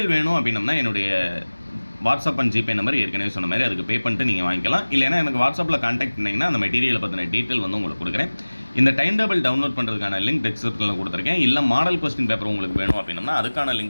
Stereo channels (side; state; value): both; inverted; correlation -1.00